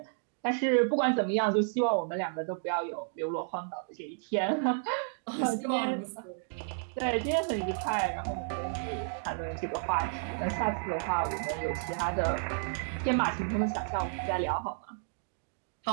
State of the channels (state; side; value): silent; left; digital silence